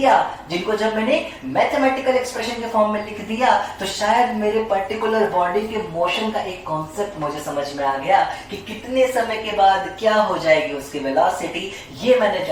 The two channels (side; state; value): both; identical; correlation 1.00